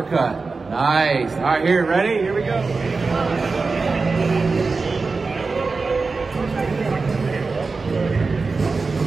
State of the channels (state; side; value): quieter; left; 4.2 dB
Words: Nice. All right, here, ready? Here we go.